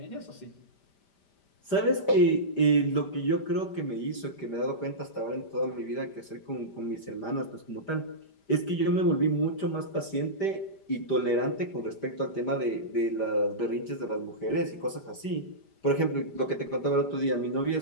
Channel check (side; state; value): right; late; 5.1 ms